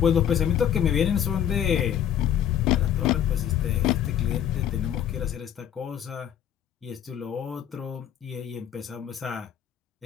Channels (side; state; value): right; quieter; 9.9 dB